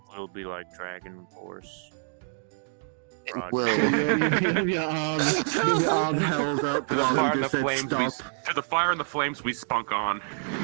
It'll be like Dragon Force. It Roger. will. so you have your arm held up Fire while and he the just said flames. stop. To the fire and the flames, we spunk on.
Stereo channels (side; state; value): left; silent; 60 dB below the other